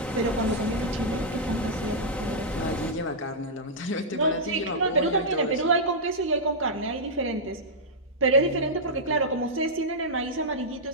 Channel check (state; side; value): normal; both; correlation -0.09